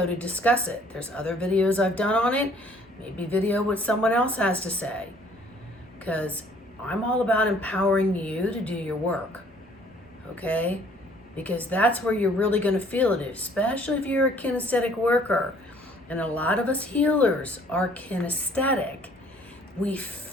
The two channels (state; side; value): normal; both; correlation 0.58